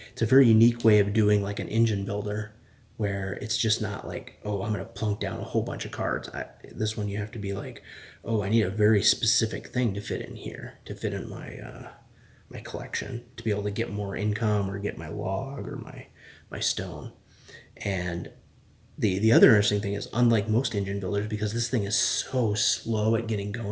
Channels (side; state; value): both; identical; correlation 1.00